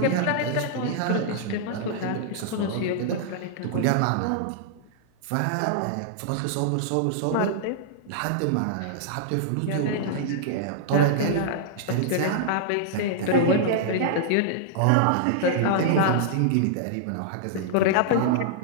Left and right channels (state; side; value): different; both; correlation -0.01